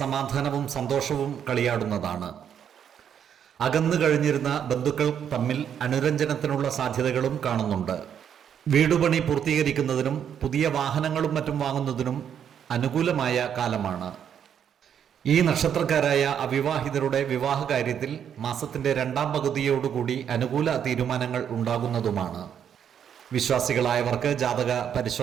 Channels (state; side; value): quieter; left; 8.6 dB